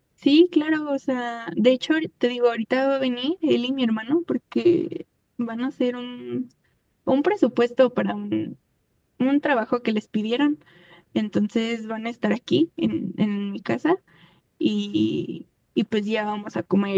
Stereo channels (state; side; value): identical; both; correlation 1.00